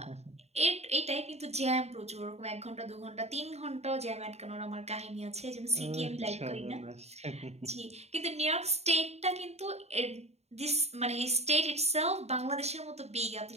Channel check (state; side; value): late; left; 0.31 ms